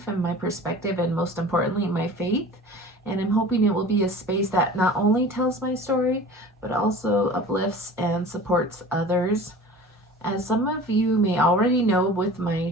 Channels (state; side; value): normal; both; correlation 0.40